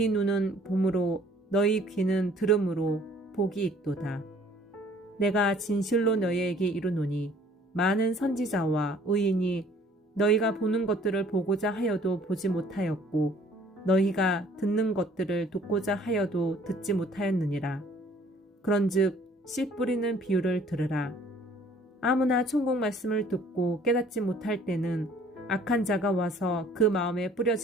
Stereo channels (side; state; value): both; normal; correlation 0.56